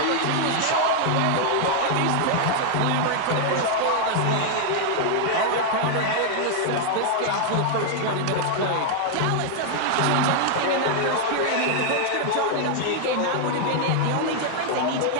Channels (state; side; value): different; both; correlation 0.00